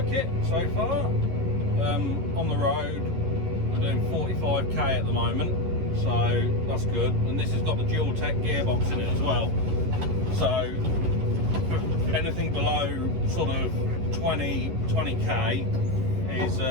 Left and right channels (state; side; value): late; left; 11 ms